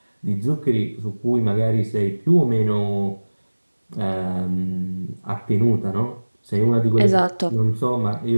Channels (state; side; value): inverted; both; correlation -1.00